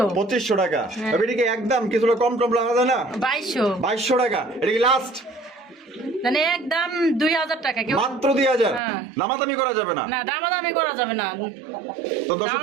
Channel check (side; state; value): left; drops out; at 8.8 s